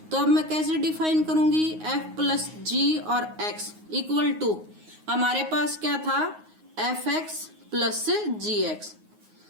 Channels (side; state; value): left; late; 9.5 ms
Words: तो अब मैं कैसे डिफाइन करूंगी, f+g और x इक्वल टू, हमारे पास क्या था fx प्लस gx।